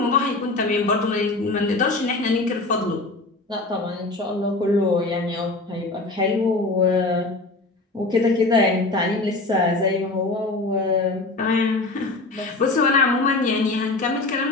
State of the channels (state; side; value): quieter; right; 3.1 dB